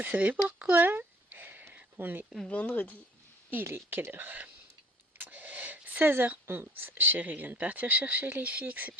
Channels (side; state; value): both; normal; correlation 0.53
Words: savez pourquoi? On est vendredi Il est quelle heure? 16h11. Chérie vient de partir chercher les filles